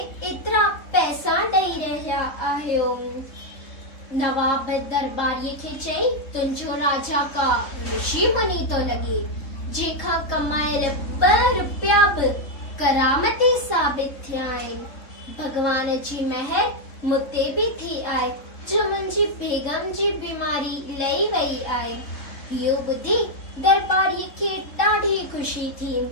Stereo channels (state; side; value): late; right; 3.7 ms